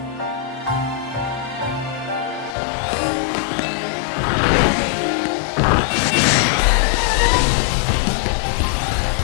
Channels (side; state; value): right; drops out; at 2.6 s